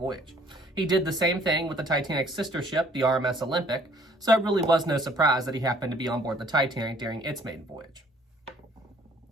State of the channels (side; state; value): both; normal; correlation 0.58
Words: He did the same thing with the Titanic's sister ship, the RMS Olympic, so it really was no surprise that he happened to be on board the Titanic during its maiden voyage.